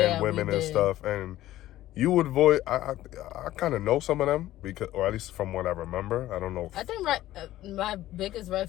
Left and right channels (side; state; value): right; quieter; 14.7 dB